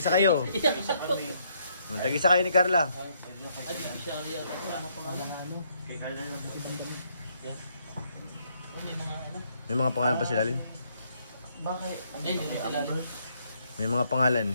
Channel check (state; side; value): inverted; both; correlation -0.71